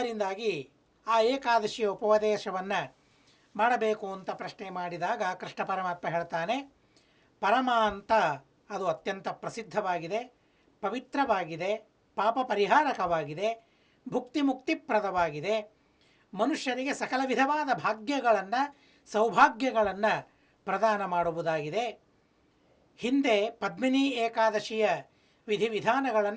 ಆ ಏಕಾದಶಿಯ ಉಪದೇಶವನ್ನು ಮಾಡಬೇಕು ಅಂತ ಪ್ರಶ್ನೆ ಮಾಡಿದಾಗ ಕೃಷ್ಣ ಪರಮಾತ್ಮ ಹೇಳ್ತಾನೆ, ಪರಮ ಅಂತ ಅದು ಅತ್ಯಂತ ಪ್ರಸಿದ್ಧವಾಗಿದೆ, ಪವಿತ್ರವಾಗಿದೆ, ಪಾಪ ಪರಿಹಾರಕವಾಗಿದೆ, ಭುಕ್ತಿ ಮುಕ್ತಿಪ್ರದವಾಗಿದೆ, ಮನುಷ್ಯರಿಗೆ ಸಕಲ ವಿಧವಾದ ಭಾಗ್ಯಗಳನ್ನು ಸೌಭಾಗ್ಯಗಳನ್ನು ಪ್ರದಾನ ಮಾಡುವುದಾಗಿದೆ. ಹಿಂದೆ ಪದ್ಮಿನಿ ಏಕಾದಶಿಯ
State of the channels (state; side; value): identical; both; correlation 1.00